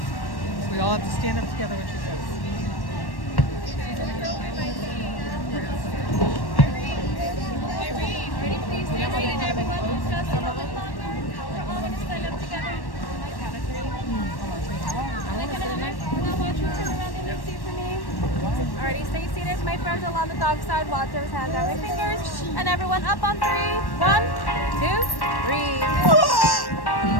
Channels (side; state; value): right; late; 1.1 ms